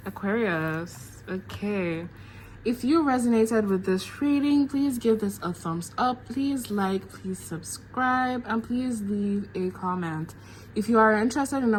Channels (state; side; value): identical; both; correlation 1.00